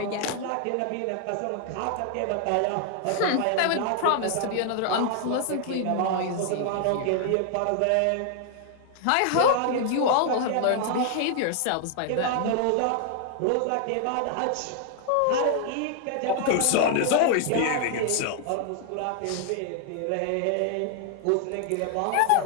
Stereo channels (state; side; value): different; both; correlation 0.00